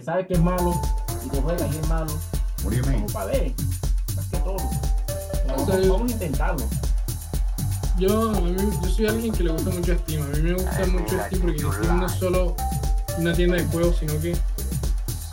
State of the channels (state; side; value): identical; both; correlation 1.00